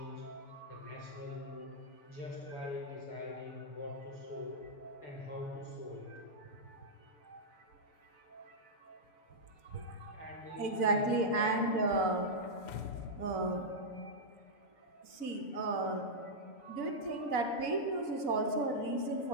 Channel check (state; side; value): late; right; 6.9 ms